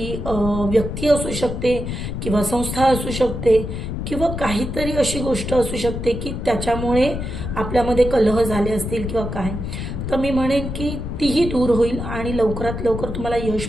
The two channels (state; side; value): noise; left; rumble, 5 dB below the sound